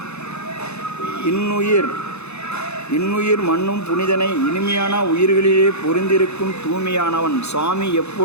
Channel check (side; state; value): right; late; 0.80 ms